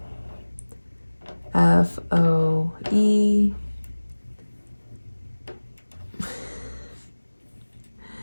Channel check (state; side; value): inverted; both; correlation -1.00